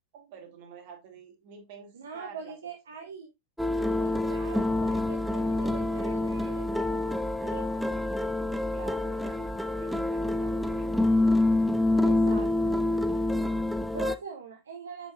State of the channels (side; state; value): both; normal; correlation 0.92